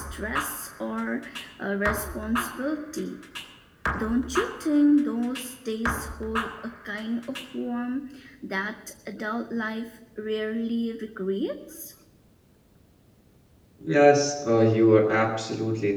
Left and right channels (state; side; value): identical; both; correlation 1.00